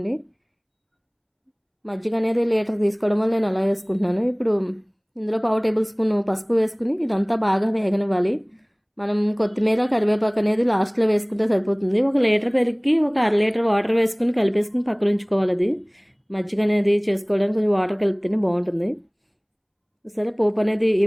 మజ్జిగ అనేది లీటర్ తీసుకోవడం వల్ల నేను అలా వేసుకుంటున్నాను. ఇప్పుడు ఇందులో 1/2 టేబుల్ స్పూన్ పసుపు వేసుకుని ఇదంతా బాగా వేగనివ్వాలి. మనం కొత్తిమీర, కరివేపాకు అనేది లాస్ట్లో వేసుకుంటే సరిపోతుంది. 1 లీటర్ పెరుగుకి 1 అర లీటర్ వాటర్ వేసుకుని కలిపేసుకుని పక్కన ఉంచుకోవాలి. అది మజ్జిగ అనేది చేసుకోవడానికి కొంచెం వాటర్ కలిపితేనే బాగుంటుంది. సరే, పోపు అనేది ఈ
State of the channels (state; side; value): identical; both; correlation 1.00